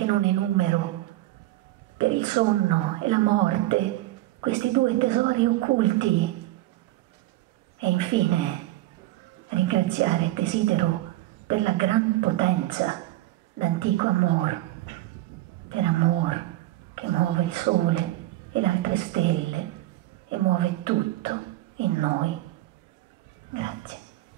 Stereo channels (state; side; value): quieter; left; 16.5 dB